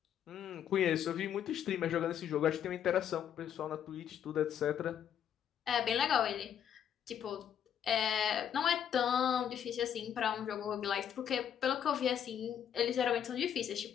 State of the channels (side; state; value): right; quieter; 9.1 dB